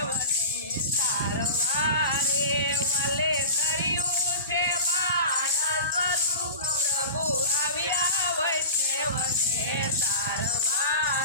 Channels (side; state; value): both; inverted; correlation -0.32